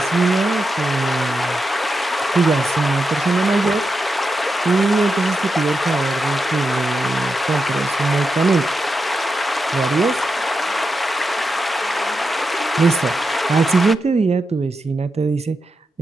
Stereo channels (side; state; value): both; normal; correlation 0.87